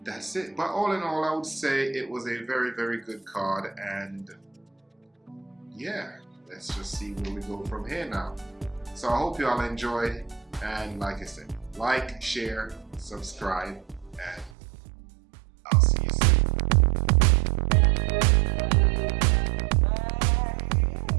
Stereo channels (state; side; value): drops out; left; at 14.6 s